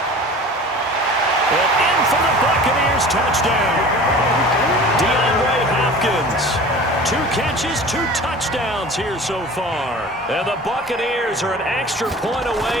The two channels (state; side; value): normal; both; correlation 0.40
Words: And in for the Buccaneers, touchdown. DeAndre Hopkins. 2 catches, 2 touchdowns here so far. And the Buccaneers are an extra point